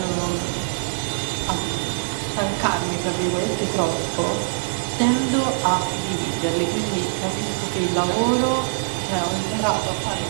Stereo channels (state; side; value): silent; left; 63 dB below the other